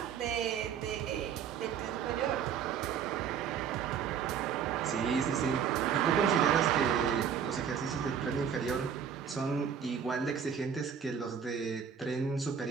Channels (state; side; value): quieter; left; 7.6 dB